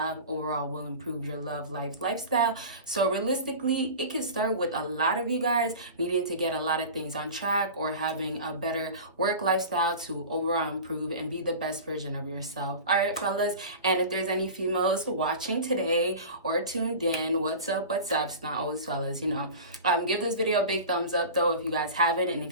overall will improve your love life lifestyle. So realistically, it can start with a lot of you guys needing to get a lot of things on track or having a better work lifestyle to overall improve and be the best version of yourself. All right, fellas. And if there's any females watching today or tuned in, what's up? It's not always fellas, give this video a big thumbs up though if you guys haven't. And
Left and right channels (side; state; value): both; inverted; correlation -0.34